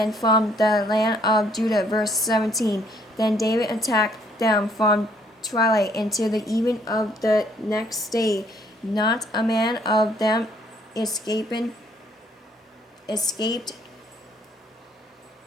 from the land of Judah. Verse 17. Then David attacked them from twilight until the even of the next day. Not a man of them escaped.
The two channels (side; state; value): both; normal; correlation 0.65